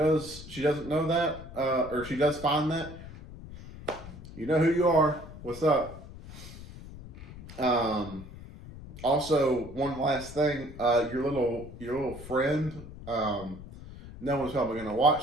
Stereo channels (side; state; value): left; noise; rumble, 15 dB below the sound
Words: know that, or she does find that. You know who you are. What's up? Also, one last thing. Your little friend. No one's probably gonna